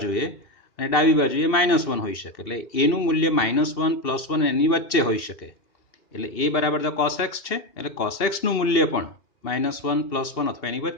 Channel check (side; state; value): right; late; 2.7 ms